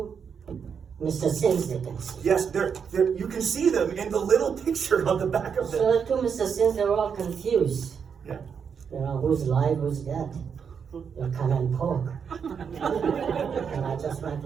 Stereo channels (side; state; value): left; quieter; 6.8 dB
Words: Mr. Sims they can see. Yes, they're, you can see them in the little picture on the back of them. So the two Mr. Sims, they were all confused. Yeah. Who's live, who's dead. You come and poke. And I just went